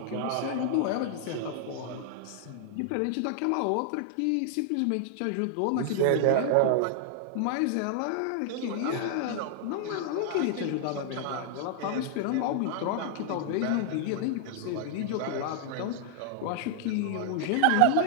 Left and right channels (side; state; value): both; different; correlation -0.01